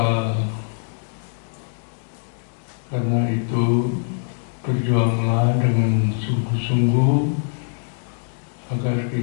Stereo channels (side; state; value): right; silent; digital silence